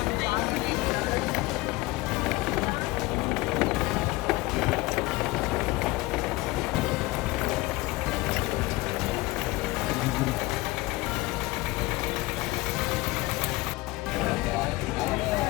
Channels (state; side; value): quieter; right; 20.7 dB